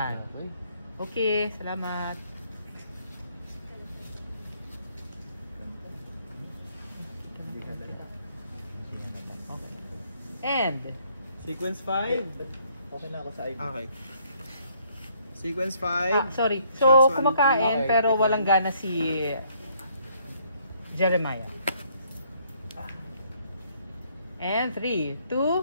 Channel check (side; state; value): both; inverted; correlation -0.67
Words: Okay, salamat. Okay. And Sequence 5. Okay na ako sa ID. Okay. Sequence 5. sorry. Shots So, 1 and 2. kumakain Okay, pero take walang one. gana si Jeremiah. And 3,